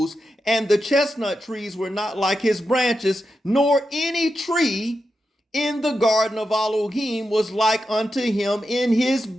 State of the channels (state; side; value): normal; both; correlation 0.88